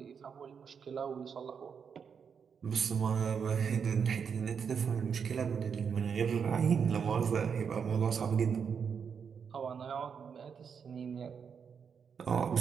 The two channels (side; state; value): left; quieter; 6.7 dB